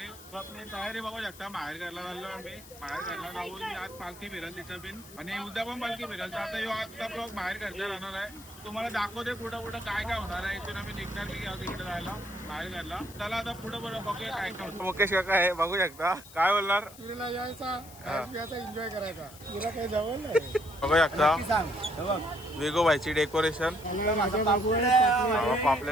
तर आपली तयारी बघू शकता. बाहेर घरला चाललो आम्ही, बाहेर घरला जाऊन आज पालखी फिरल तिथं बिन, आणि उद्या पण पालखी फिरल. तर आता ह्यो आजचा ब्लॉग बाहेर घरचा राहणार आहे. तुम्हाला दाखवते पुढं पुढं काय काय होणार आहे. इथून आम्ही निघणार की तिकडे जायला बाहेर घरला. चला आता पुढं पुढं बघूया काय काय होतं. मुकेश काका आहे, बघू शकता. काय बोलणार? तुला यायचा एन्जॉय करायचा, तुला काही जवळ नाही. बघू शकता वेगोबाईची डेकोरेशन.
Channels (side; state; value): left; noise; hiss, 19 dB below the sound